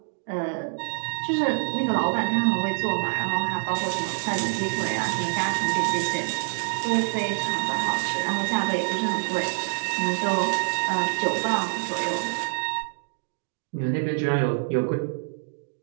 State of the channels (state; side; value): silent; left; 61 dB below the other